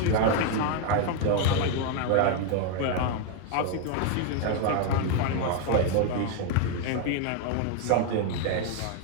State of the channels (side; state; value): both; different; correlation 0.01